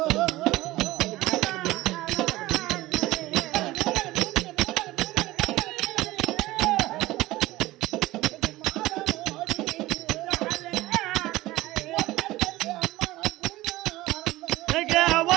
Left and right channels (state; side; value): quieter; left; 17.9 dB